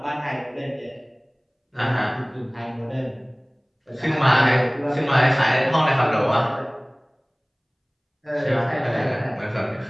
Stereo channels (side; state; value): both; identical; correlation 1.00